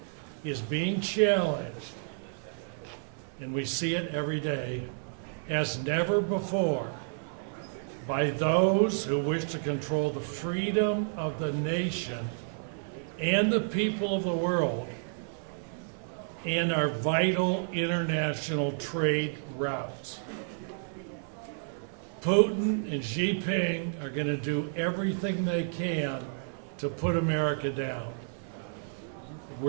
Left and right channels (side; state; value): left; silent; 57 dB below the other